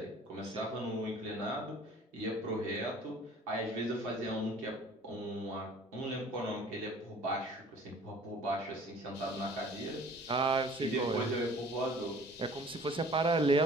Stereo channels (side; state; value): both; normal; correlation 0.50